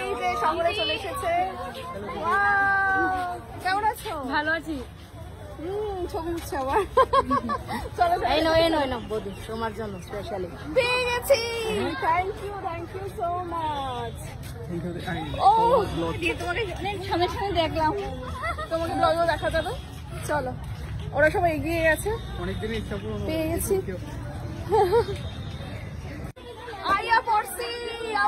এই যে শহরে চলে এসেছে। কেমন আছো? ভালো আছি। ছবি উঠছে আবার। চলো এই নো বৌদি, তোমার জন্য স্পেশালি পেয়ে গেছি। Thank you so much. ও তোমাকে অনেক সামনে সামনে দেখলাম, তোমাকে ব্লগেও দেখা যাবে। চলো, ওরা সবাই এগিয়ে গেছে, অনেকদিন ইচ্ছা পূরণ পেয়ে গেছি। আইয়া পড়ছি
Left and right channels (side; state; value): both; identical; correlation 1.00